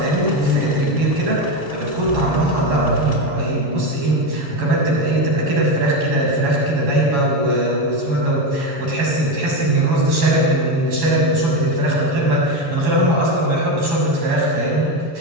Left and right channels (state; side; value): late; left; 7.2 ms